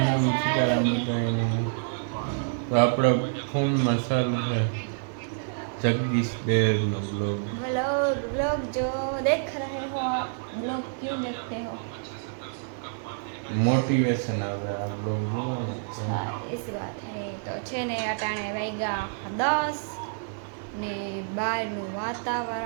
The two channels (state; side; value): silent; left; digital silence